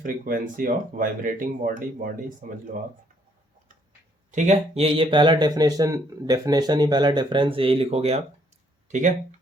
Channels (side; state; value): both; normal; correlation 0.67